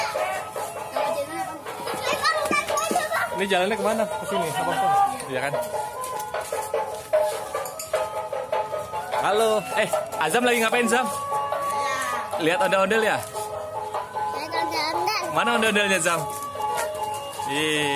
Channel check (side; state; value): both; identical; correlation 1.00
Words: Ini jalannya kemana? Ke sini, apa pun? Iya kan? Halo, Azam lagi ngapain Zam? Lihat ondel-ondel ya? Mana ondel-ondelnya Zam?